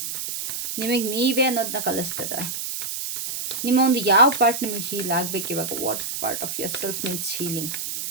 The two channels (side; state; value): right; noise; hiss, 5 dB below the sound